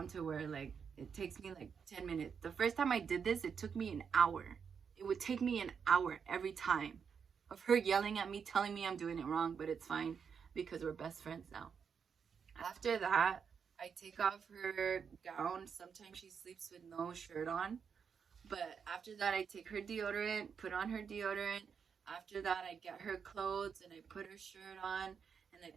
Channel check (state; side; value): quieter; left; 6.6 dB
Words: to where like it takes me like 10 minutes. The first time I did this, it took me an hour. It would take me an hour every time of her yelling at me, telling me I'm doing it wrong, but it's fine because we're best friends now. After that, I take off her gown. Sometimes she sleeps with no shirt on. But after that, I take her deodorant, put on her deodorant. After that, I get her clothes and I put her shirt on and I